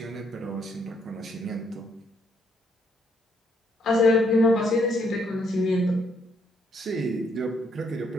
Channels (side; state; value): both; normal; correlation 0.72